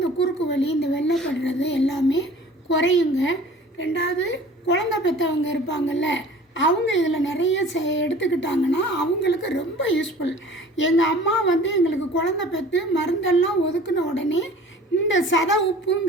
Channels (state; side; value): normal; both; correlation 0.46